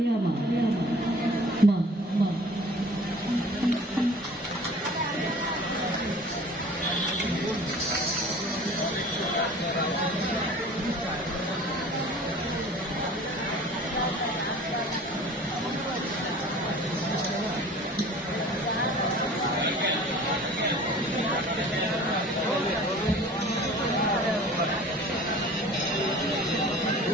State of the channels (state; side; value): normal; both; correlation 0.45